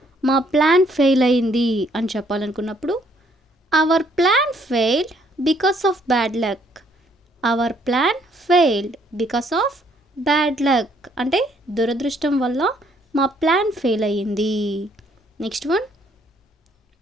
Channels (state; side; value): normal; both; correlation 0.66